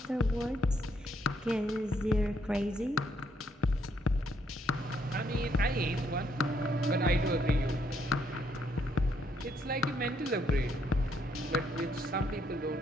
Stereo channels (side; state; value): both; normal; correlation 0.73